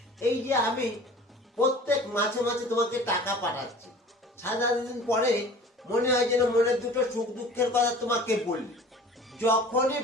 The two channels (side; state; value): both; normal; correlation 0.44